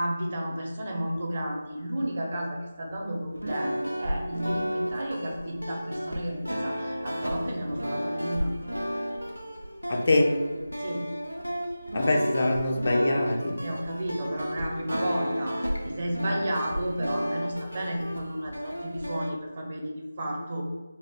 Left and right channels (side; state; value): both; inverted; correlation -0.94